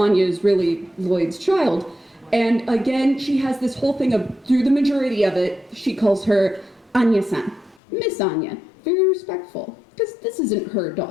is really Lloyd's child. And again, she has this whole thing of, through the majority of it, she calls her Anya-san, Miss Anya, very respectful, because this isn't her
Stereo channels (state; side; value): drops out; right; at 7.8 s